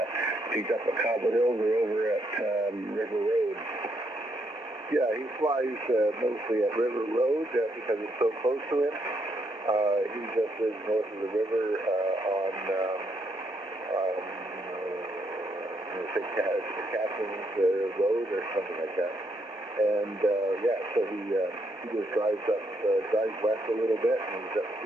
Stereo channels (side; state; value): both; normal; correlation 0.75